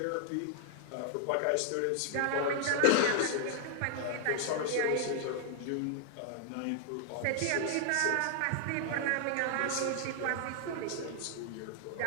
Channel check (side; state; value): both; different; correlation 0.00